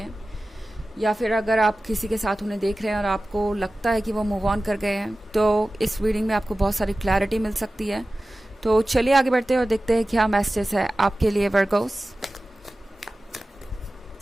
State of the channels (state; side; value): normal; both; correlation 0.96